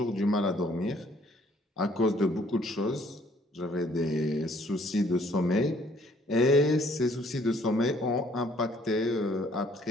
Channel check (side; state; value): both; normal; correlation 0.62